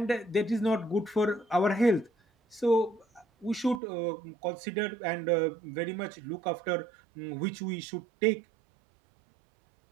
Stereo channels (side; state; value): left; drops out; at 3.8 s